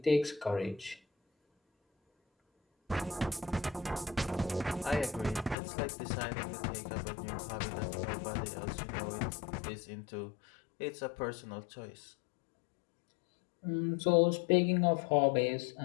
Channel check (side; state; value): right; drops out; at 5.6 s